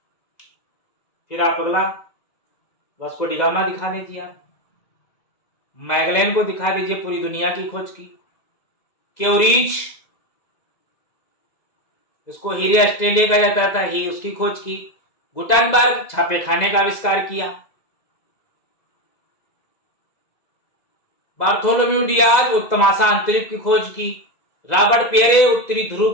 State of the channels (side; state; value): right; late; 2.0 ms